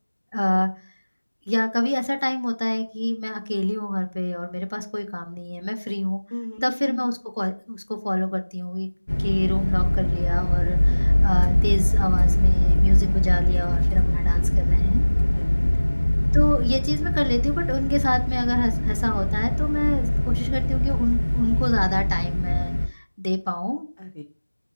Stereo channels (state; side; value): inverted; both; correlation -1.00